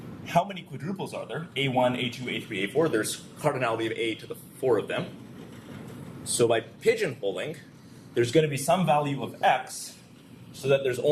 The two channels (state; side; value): identical; both; correlation 1.00